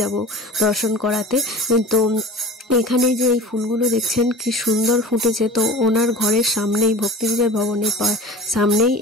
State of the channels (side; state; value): both; normal; correlation 0.38